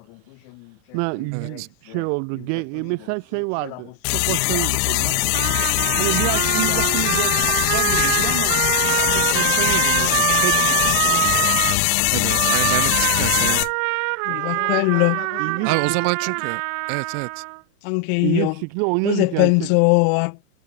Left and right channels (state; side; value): different; both; correlation 0.00